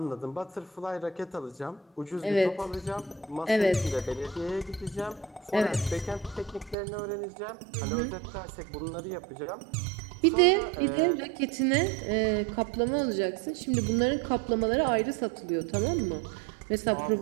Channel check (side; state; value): left; drops out; at 6.8 s